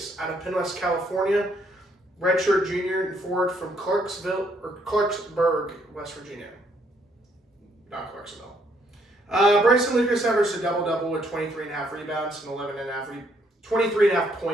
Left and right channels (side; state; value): both; normal; correlation 0.70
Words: out of Penn West, California, redshirt junior and forward from Clarksburg, West Virginia. Not Clarksville. Bryson Lucas averaged a double-double with 23.5 rebounds and 23.5